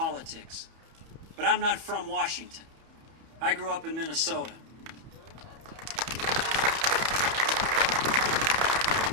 But I'm not from Washington. I grew up in Minnesota.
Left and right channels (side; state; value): left; late; 31 ms